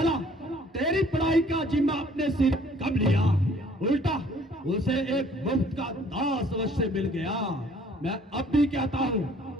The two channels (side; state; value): both; normal; correlation 0.57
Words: तेरी पढ़ाई का जिम्मा अपने सिर कब लिया। उल्टा उसे एक मुफ्त का दास अवश्य मिल गया। मैं अब भी कहता हूं